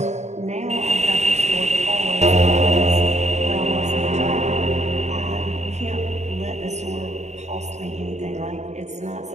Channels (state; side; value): late; left; 0.33 ms